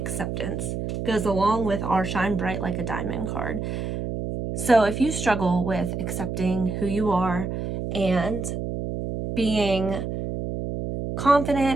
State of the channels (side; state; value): right; noise; hum, 4 dB below the sound